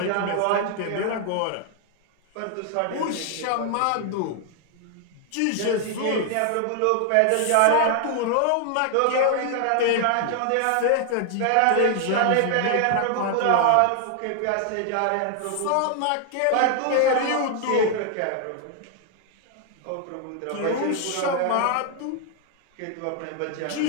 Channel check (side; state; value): both; different; correlation 0.00